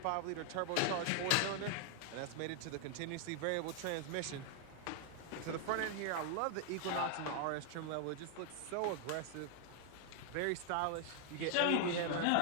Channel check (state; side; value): different; both; correlation 0.00